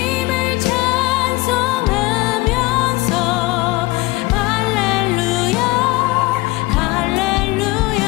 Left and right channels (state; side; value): quieter; right; 21.1 dB